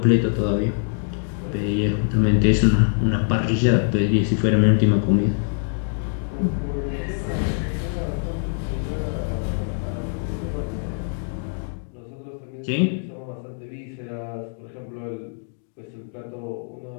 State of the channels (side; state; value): right; silent; digital silence